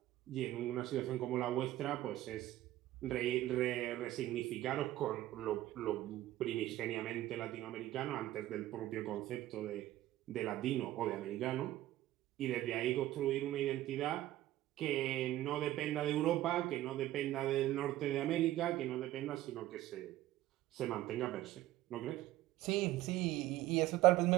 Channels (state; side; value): quieter; left; 15.1 dB